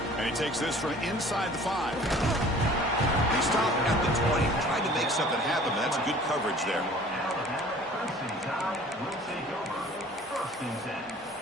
Takes this from inside the 5. They stop at the 20, trying to make something happen, but that's good coverage there.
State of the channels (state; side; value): normal; both; correlation 0.48